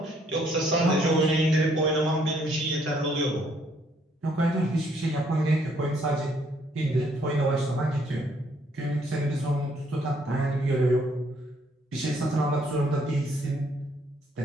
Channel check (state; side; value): normal; both; correlation 0.67